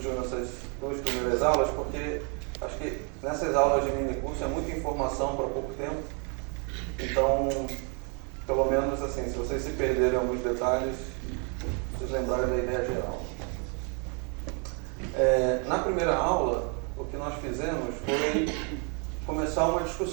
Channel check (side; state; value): left; quieter; 37.1 dB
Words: nessas duas primeiras aulas, porque acho que nessas aulas de mini curso é muita informação para pouco tempo. Então, pelo menos assim, se vocês se perderem alguns detalhes, vocês lembrarem da ideia geral. Na primeira aula, o que nós fizemos foi começar uma